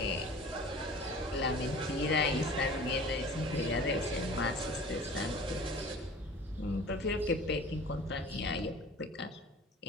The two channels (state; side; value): normal; both; correlation 0.43